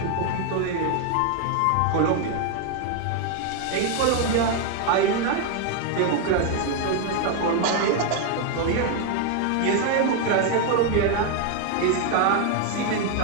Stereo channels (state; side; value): different; both; correlation 0.01